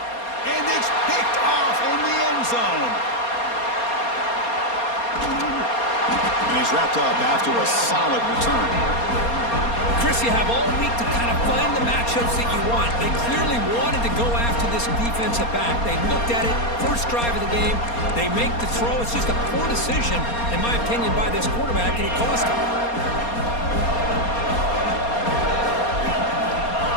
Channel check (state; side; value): late; right; 4.3 ms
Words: And it's picked off in the end zone. And he's wrapped up after a solid return. Chris, you have all week to kind of find the matchups that you want. They clearly wanted to go after this defensive back. They looked at it, first drive of the game. They make the throw. It's just a poor decision, in my opinion, by this quarterback, and it cost him.